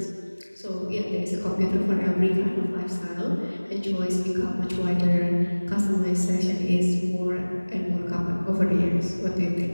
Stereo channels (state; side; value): inverted; both; correlation -1.00